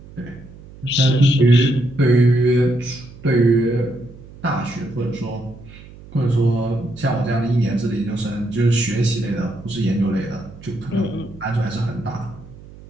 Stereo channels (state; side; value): noise; right; hum, 19 dB below the sound